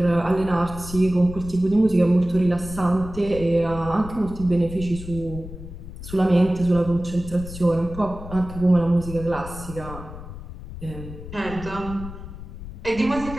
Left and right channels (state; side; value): noise; left; rumble, 12 dB below the sound